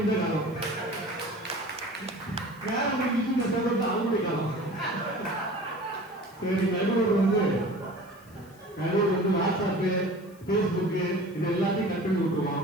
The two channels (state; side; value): noise; left; hiss, 27 dB below the sound